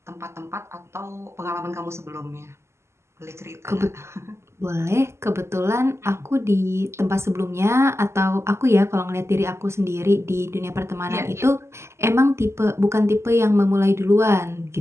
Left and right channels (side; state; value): left; late; 0.13 ms